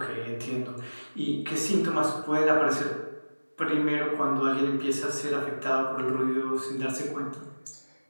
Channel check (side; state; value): both; inverted; correlation -1.00